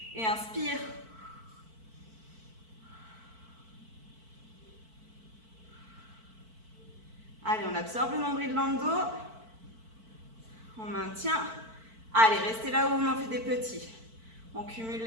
et inspire. Allez, on absorbe le nombril dans le dos. On maintient. Allez, restez là où on en fait des petits. On cumule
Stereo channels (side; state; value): left; late; 4.5 ms